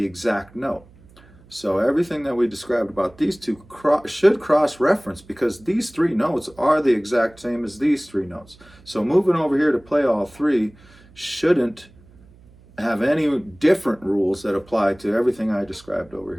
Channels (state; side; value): noise; right; hum, 26 dB below the sound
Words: exact note. So everything that we described about these two should cross-reference because these three notes are the exact same as these three notes. So moving over here to play all three shouldn't have any different rules that apply to everything I described over